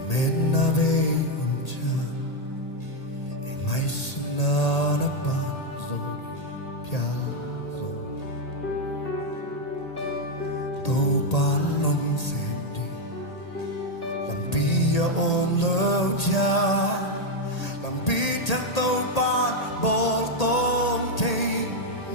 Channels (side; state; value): right; late; 1.8 ms